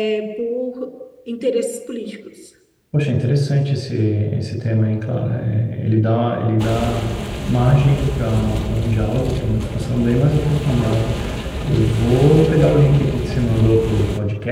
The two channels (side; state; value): both; identical; correlation 1.00